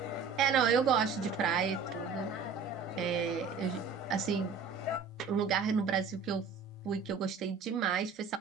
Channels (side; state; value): left; quieter; 5.3 dB